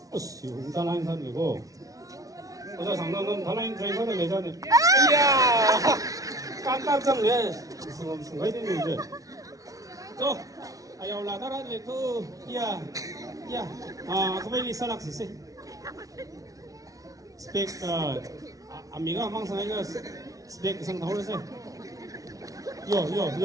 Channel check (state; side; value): late; left; 0.17 ms